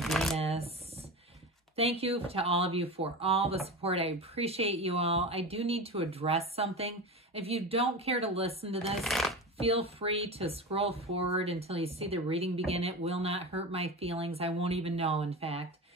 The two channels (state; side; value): normal; both; correlation 0.26